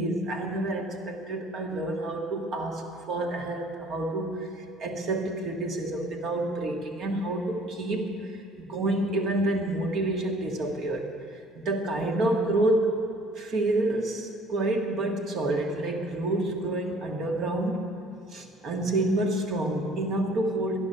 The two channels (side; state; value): both; normal; correlation 0.54